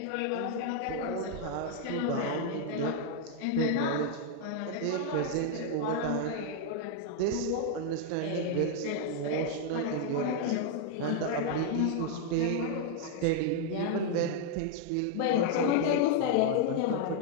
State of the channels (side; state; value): both; different; correlation 0.00